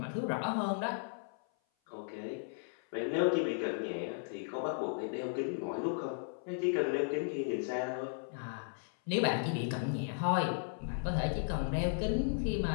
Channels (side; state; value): right; silent; 54 dB below the other